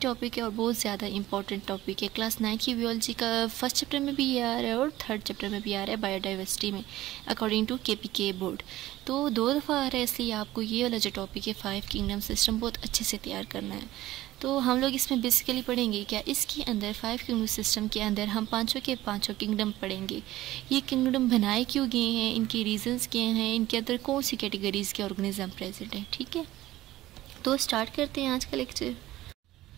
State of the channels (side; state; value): left; quieter; 15.9 dB